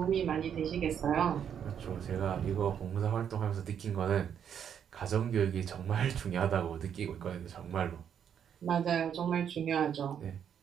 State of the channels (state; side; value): quieter; left; 8.5 dB